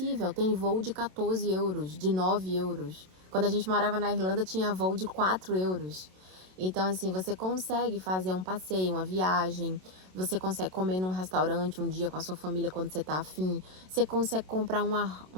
Tem voo de 14 euros, de 9 euros. Quando a gente morava na Irlanda, tinha voo de 4 euros. Então, assim, você consegue fazer um passeio, uma viagem, você consegue comer num restaurante um dia com a sua família quando você tá afim, você consegue comprar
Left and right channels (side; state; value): left; late; 27 ms